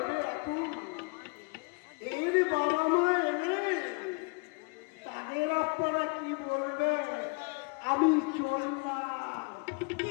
রাখুন এর বাবা মা এলে তাদের আপনারা কি বলবে। আমি চললাম। কি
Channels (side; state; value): right; quieter; 32.2 dB